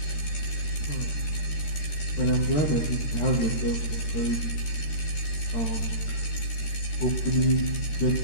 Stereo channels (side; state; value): right; late; 13 ms